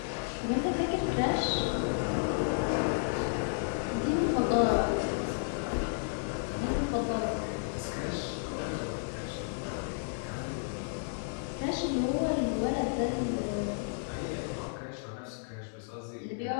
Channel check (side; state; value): right; silent; 56 dB below the other